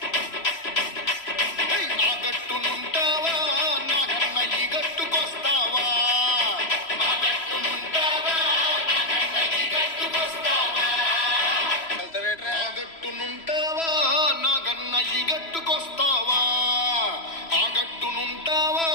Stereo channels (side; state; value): right; late; 3.0 ms